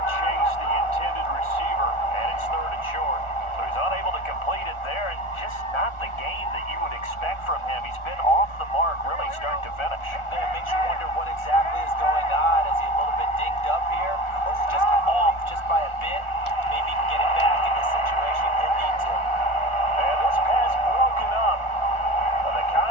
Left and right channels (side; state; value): right; late; 1.4 ms